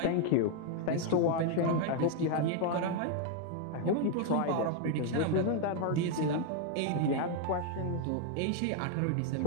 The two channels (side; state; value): both; different; correlation 0.01